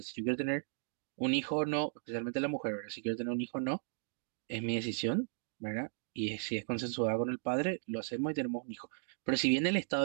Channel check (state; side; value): silent; left; digital silence